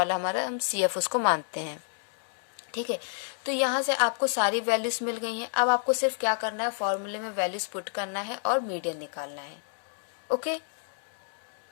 हमारा हम CF उसको मानते हैं। ठीक है, तो यहाँ से आपको सारी वैल्यूज मिल गई हैं। अब आपको सिर्फ क्या करना है, फॉर्मूले में वैल्यूज पुट करना है और मीडियन निकालना है। ओके,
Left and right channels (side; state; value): right; silent; digital silence